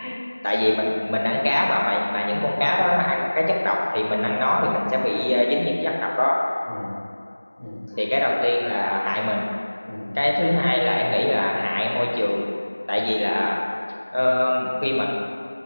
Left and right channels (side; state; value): both; inverted; correlation -1.00